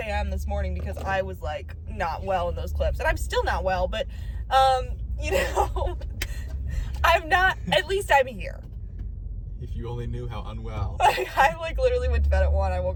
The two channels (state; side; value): identical; both; correlation 1.00